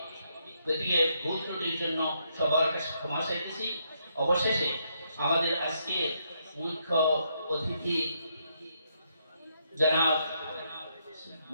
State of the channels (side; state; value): both; inverted; correlation -0.76